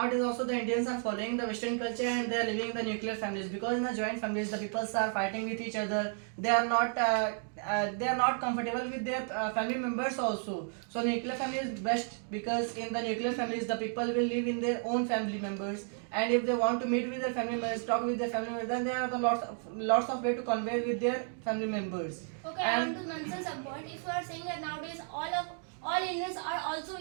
also the Indians are following the Western culture and they are living in the nuclear families, because in the joint families the peoples are fighting with each other. They are not comfortable with their family members also. So nuclear family is best, because in the nuclear families the people will live in their own family members, and if they want to meet with their family members, talk with their family members, then there are the lots of way to convey with their family members. Okay, I want to mention some point. If you are saying that nowadays all Indians are also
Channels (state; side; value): silent; left; 56 dB below the other